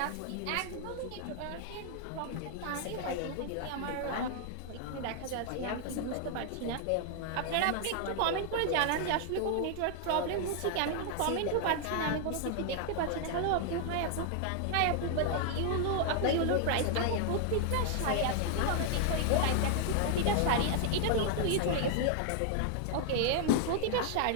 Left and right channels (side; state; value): both; different; correlation 0.00